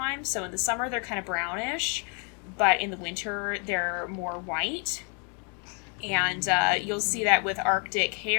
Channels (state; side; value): quieter; right; 37.1 dB